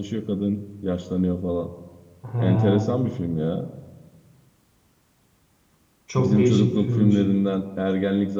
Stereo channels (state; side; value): identical; both; correlation 1.00